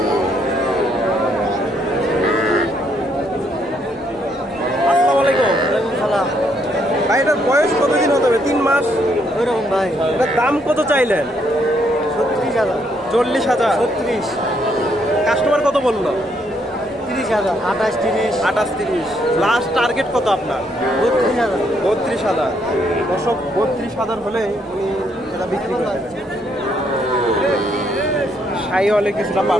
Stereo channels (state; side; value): normal; both; correlation 0.72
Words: মাস? ওইরকম ভাই। এটার দাম কত চাইলেন? 36,000, 40,000। 36, কাস্টমার কত বললো? 30,000, 28, 30, 28, 30। লাস্ট টার্গেট কত আপনার? 32,000। 32,000। দর্শক 32,000 হলে উনি এটা বিক্রি করবেন। সাই হলে কিছুটা